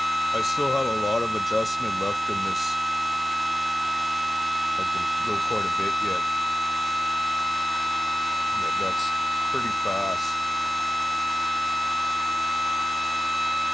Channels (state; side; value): normal; both; correlation 0.95